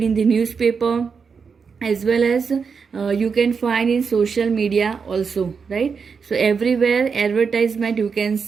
in the newspaper, as well as you can find in social media also, right? So everywhere advertisement you can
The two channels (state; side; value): quieter; left; 5.7 dB